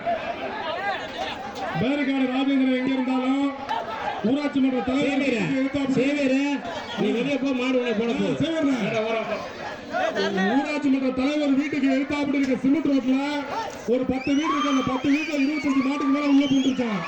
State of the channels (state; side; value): identical; both; correlation 1.00